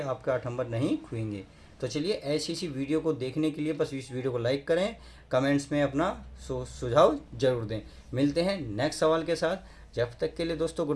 आपके 8 नंबर नहीं खोएंगे। तो चलिए ऐसी सी वीडियो को देखने के लिए बस इस वीडियो को लाइक करें, कमेंट्स में अपना सुझाव जरूर दें। मिलते हैं नेक्स्ट सवाल के साथ। जब तक के लिए दोस्तों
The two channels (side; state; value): both; identical; correlation 1.00